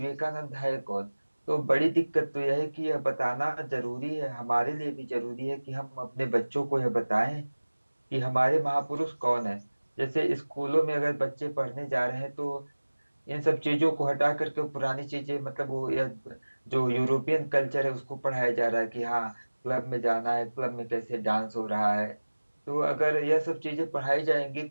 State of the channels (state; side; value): inverted; both; correlation -1.00